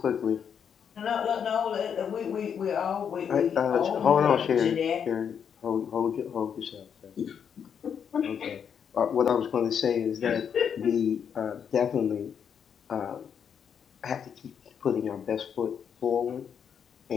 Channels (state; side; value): quieter; right; 7.6 dB